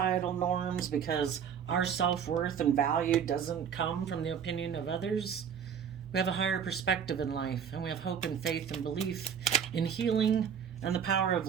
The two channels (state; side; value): quieter; left; 7.7 dB